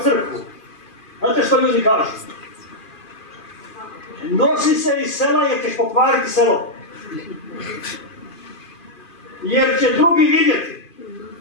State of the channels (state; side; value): late; right; 2.5 ms